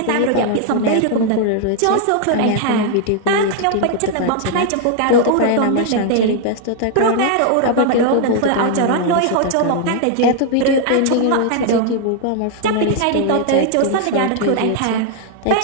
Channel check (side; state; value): both; different; correlation 0.00